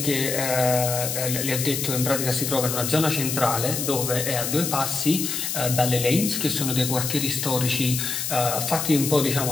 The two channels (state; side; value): noise; left; hiss, 2 dB below the sound